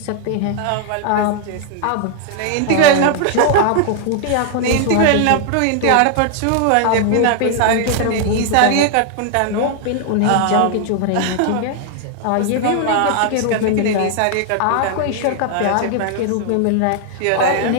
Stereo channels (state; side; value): different; both; correlation 0.00